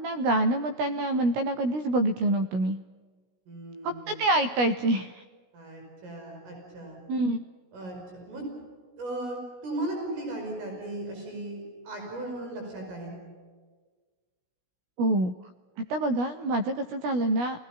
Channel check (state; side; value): late; left; 16 ms